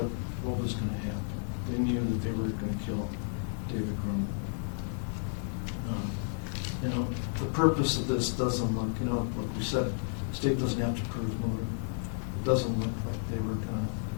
was going to happen. They knew that they were going to kill David Grunwald. The purpose of this doesn't look, like we said, the state doesn't have to prove motive. doesn't look like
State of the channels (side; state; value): right; silent; 56 dB below the other